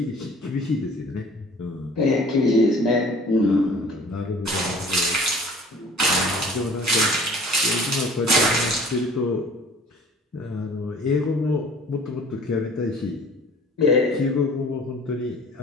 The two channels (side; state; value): both; normal; correlation 0.48